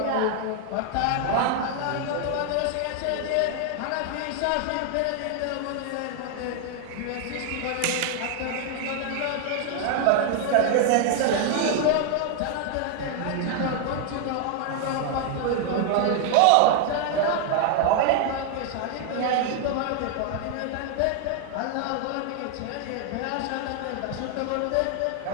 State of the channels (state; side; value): different; both; correlation 0.00